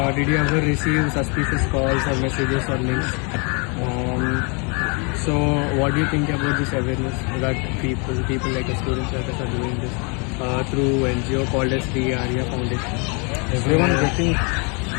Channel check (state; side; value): quieter; right; 33.6 dB